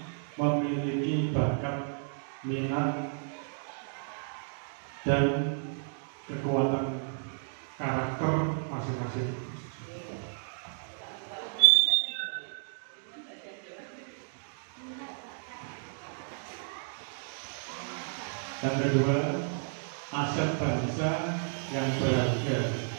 memiliki bakat, minat, dan kekuatan karakter masing-masing. Dan kedua, aset bangsa yang berharga.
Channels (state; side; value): silent; left; digital silence